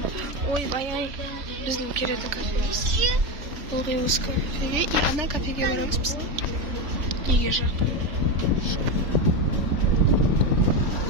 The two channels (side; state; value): left; late; 3.4 ms